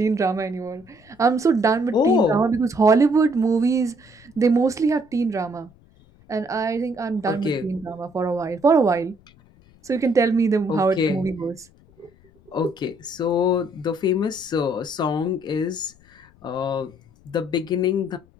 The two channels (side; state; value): left; noise; rumble, 28 dB below the sound